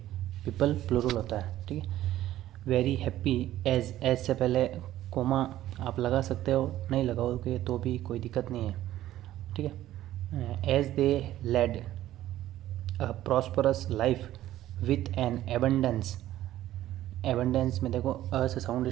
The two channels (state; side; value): quieter; left; 13.8 dB